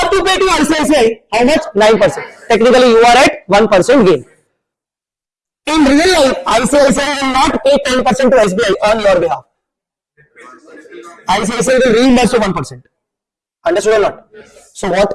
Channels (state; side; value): identical; both; correlation 1.00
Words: to pay to ICICI. How much? 9%. Technically, you are at 1% gain. In real life, ICICI will not pay 10% to SBI on your behalf. ICICI will reimburse you 1%. Understood or not? So